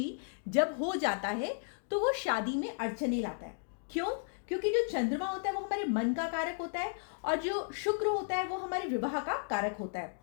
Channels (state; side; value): silent; right; digital silence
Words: जब हो जाता है तो वो शादी में अड़चने लाता है। क्यों? क्योंकि जो चंद्रमा होता है वो हमारे मन का कारक होता है और जो शुक्र होता है वो हमारे विवाह का कारक होता है।